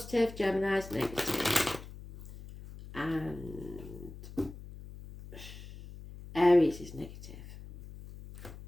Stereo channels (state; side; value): noise; left; hum, 14 dB below the sound